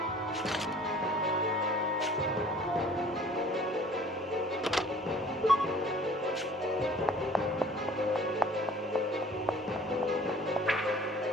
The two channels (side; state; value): both; normal; correlation 0.51